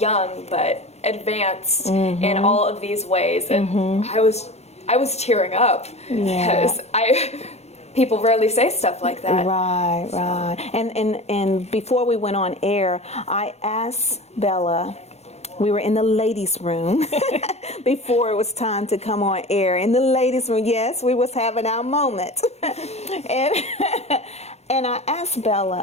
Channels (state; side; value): late; right; 0.31 ms